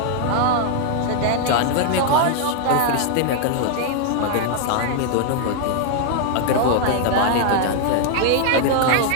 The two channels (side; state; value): both; different; correlation 0.00